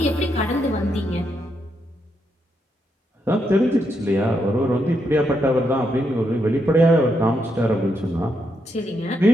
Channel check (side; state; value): both; normal; correlation 0.80